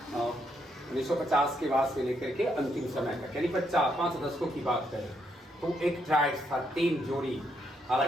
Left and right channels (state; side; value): normal; both; correlation 0.76